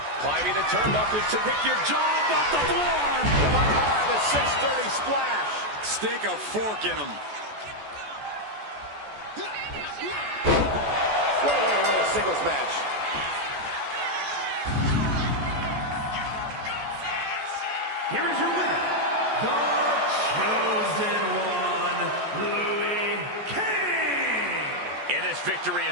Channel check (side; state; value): left; late; 14 ms